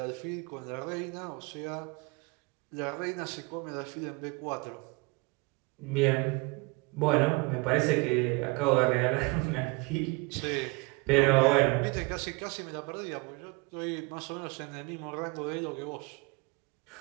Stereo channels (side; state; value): left; quieter; 27.4 dB